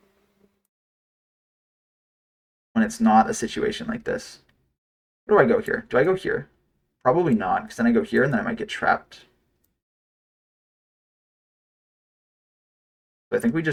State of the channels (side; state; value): both; identical; correlation 1.00